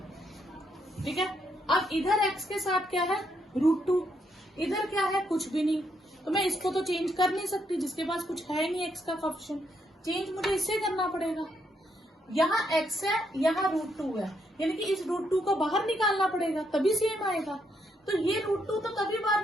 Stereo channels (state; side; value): normal; both; correlation 0.76